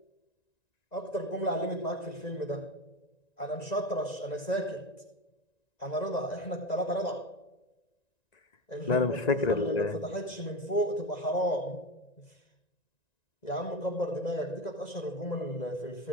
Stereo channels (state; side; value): late; right; 1.9 ms